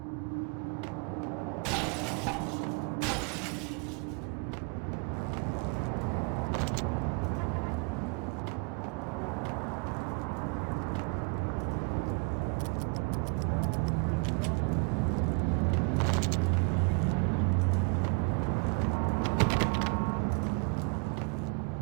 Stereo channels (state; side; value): quieter; left; 35.9 dB